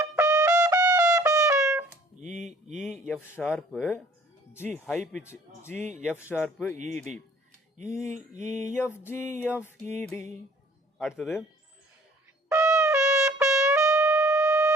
E E F sharp, G high pitch G F sharp E D, E E F G F E D. அடுத்தது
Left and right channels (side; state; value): both; normal; correlation 0.55